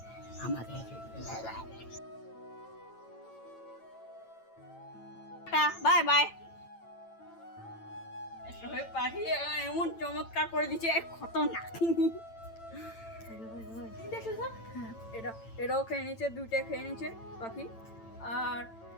বাই বাই। পাখি এমন চমৎকার করে দিচ্ছে, খতরনাক। এটাও খেয়ে নিচ্ছে, দুইটা খেয়ে নিচ্ছে পাখি।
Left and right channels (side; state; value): right; late; 8.9 ms